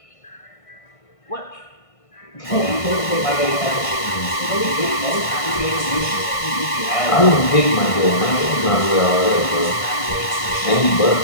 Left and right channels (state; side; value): late; right; 1.5 ms